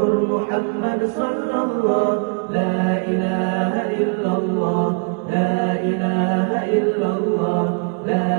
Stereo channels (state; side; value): quieter; left; 38.0 dB